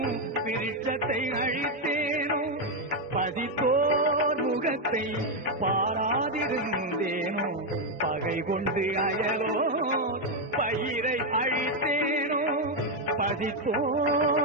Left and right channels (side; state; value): both; normal; correlation 0.04